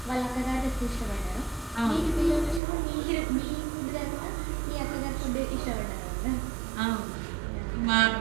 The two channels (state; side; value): drops out; left; at 2.6 s